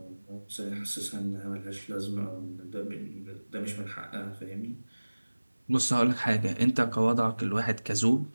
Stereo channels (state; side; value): inverted; both; correlation -1.00